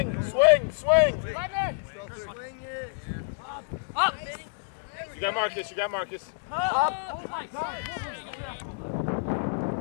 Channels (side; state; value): right; silent; digital silence